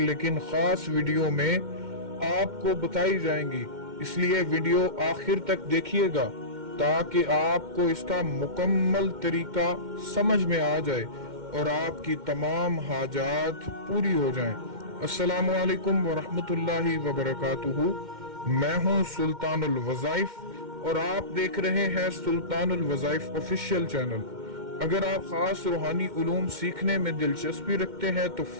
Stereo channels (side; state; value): left; late; 2.1 ms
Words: लेकिन खास वीडियो में आपको बताई जाएंगी, इसलिए वीडियो आखिर तक देखिएगा ताकि आपको इसका मुकम्मल तरीका समझ में आ जाए और आपकी तमाम हाजात पूरी हो जाएं। अस्सलामु अलैकुम वरहमतुल्लाहि वबरकातुहू। मैं हूं सुल्तानुल वज़ाइफ और आप देख रहे हैं सुल्तानुल वज़ाइफ ऑफिशियल चैनल। अगर आप खास रूहानी उलूम सीखने में दिलचस्पी रखते हैं तो